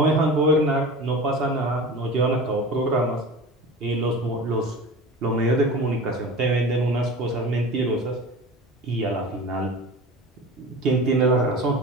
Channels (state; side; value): normal; both; correlation 0.34